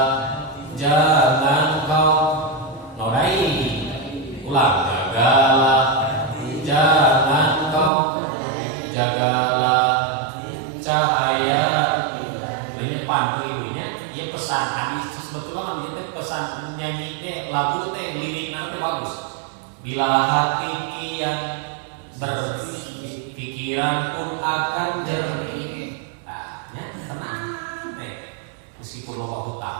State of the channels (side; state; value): left; drops out; at 7.9 s